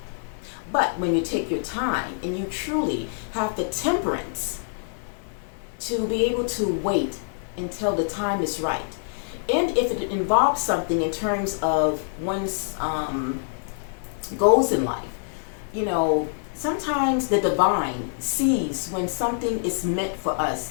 But when you take your time and you truly have the temperance to be able to wait until the time is right, and if it involves something in terms of one's goals in life, sometimes the divine sees when something is meant for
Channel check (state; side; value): silent; right; 59 dB below the other